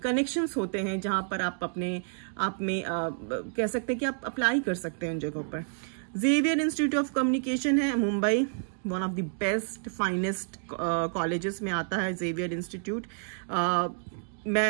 होते हैं जहां पर आप अपने आप में कह सकते हैं कि आप अप्लाई कर सकते हैं उन जगहों पर। जेवियर इंस्टीट्यूट ऑफ कम्युनिकेशन है Mumbai, one of the best finest colleges में आता है जेवियर इंस्टीट्यूट।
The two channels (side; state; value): left; silent; digital silence